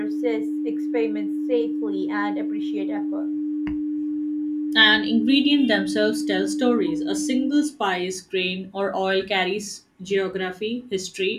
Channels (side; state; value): both; identical; correlation 1.00